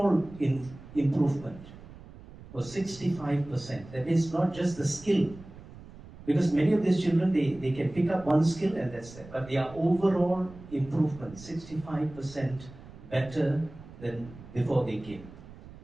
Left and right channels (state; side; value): noise; right; rumble, 18 dB below the sound